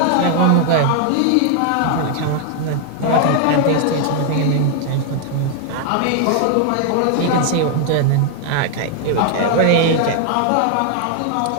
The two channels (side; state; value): both; different; correlation 0.00